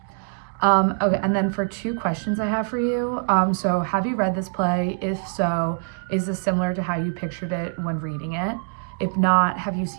Okay, and then for 2 questions I have for you. So have you read this play? If so, is this similar to how you pictured it when reading it? If not, have you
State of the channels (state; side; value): silent; left; 63 dB below the other